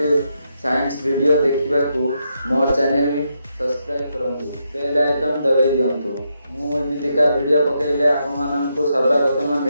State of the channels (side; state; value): both; inverted; correlation -0.81